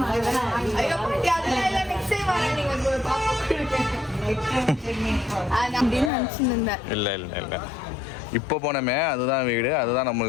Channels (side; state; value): right; drops out; at 6.1 s